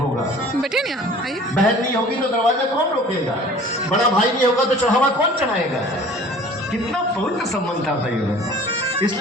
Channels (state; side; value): normal; both; correlation 0.47